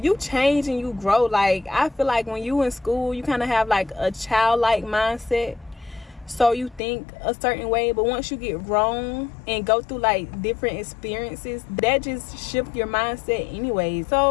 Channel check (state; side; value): drops out; right; at 6.8 s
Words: you change and you grow. Like, I feel like when you in school, you kind of have like a childlike mindset. So you think a certain way, but once you get grown and go through like different experiences, that just shift your mindset anyway.